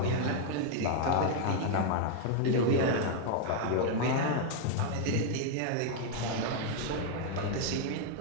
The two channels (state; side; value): different; both; correlation 0.00